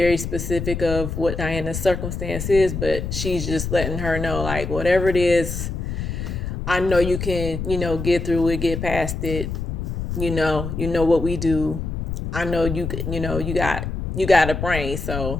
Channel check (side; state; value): left; noise; rumble, 4 dB below the sound